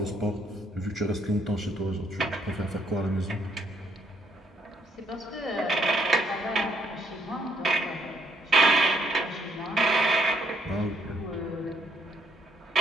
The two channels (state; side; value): normal; both; correlation 0.71